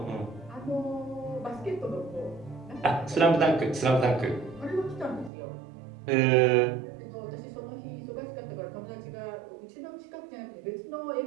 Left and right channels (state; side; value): drops out; left; at 5.3 s